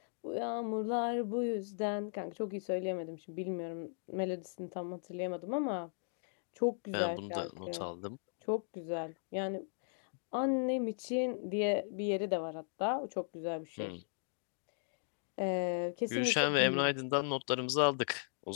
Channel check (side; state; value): right; silent; digital silence